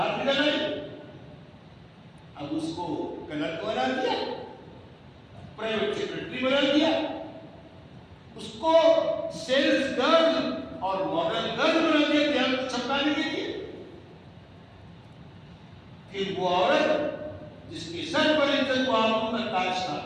نکل آئی. اب اس کو کلرک بنا دیا, پرائیویٹ سیکرٹری بنا دیا, اس کو سیلز گرل اور ماڈل گرل بنا دیا دھیان چھپانے کے لیے. پھر وہ عورت جس کے سر پر عزت و آبرو کا تاج تھا,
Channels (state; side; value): identical; both; correlation 1.00